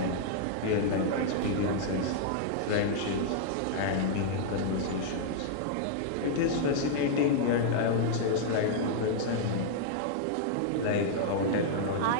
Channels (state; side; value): different; both; correlation -0.01